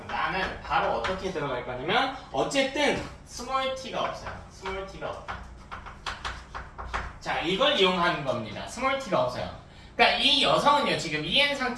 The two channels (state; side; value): identical; both; correlation 1.00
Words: 나는 바로 어떻게 들어갈 거냐면 어쨌든 스몰 t가 없어요. 스몰 t가 없다. 자, 이걸 이용하는 겁니다. 스몰 t가 없어요. 그러니까 이 여성은요, 지금 EN